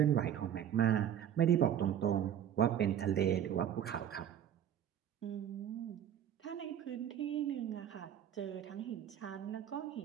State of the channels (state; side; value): quieter; left; 9.9 dB